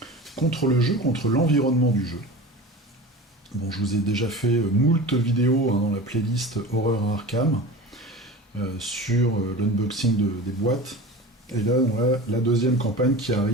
le jeu, contre l'environnement du jeu. Bon, je vous ai déjà fait moult vidéos dans la playlist Horreur à Arkham sur l'unboxing des boîtes. Et là, on a la deuxième campagne qui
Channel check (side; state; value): both; normal; correlation 0.33